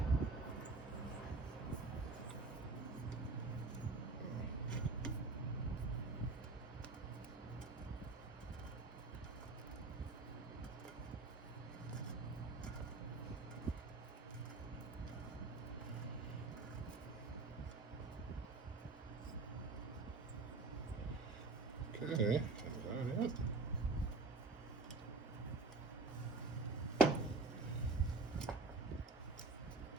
Okay, is that it?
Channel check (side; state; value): left; quieter; 3.4 dB